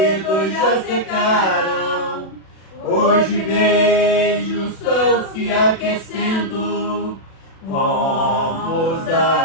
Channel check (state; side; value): late; right; 36 ms